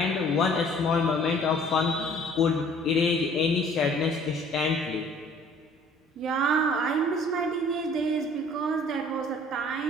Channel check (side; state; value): both; normal; correlation 0.54